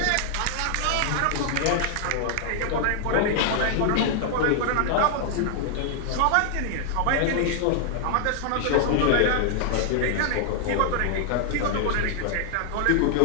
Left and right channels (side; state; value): both; different; correlation 0.00